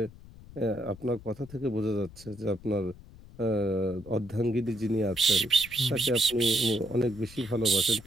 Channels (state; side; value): noise; left; rumble, 19 dB below the sound